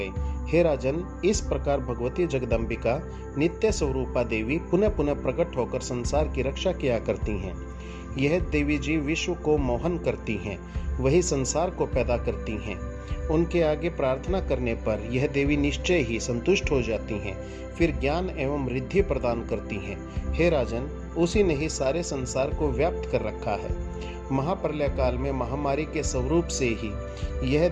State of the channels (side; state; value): both; identical; correlation 1.00